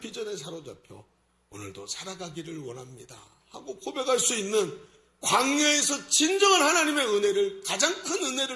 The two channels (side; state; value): both; identical; correlation 1.00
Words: 비전에 사로잡혀 오늘도 살아가기를 원합니다 하고 고백할 수 있는 광야에서 진정한 하나님의 은혜를, 가장 큰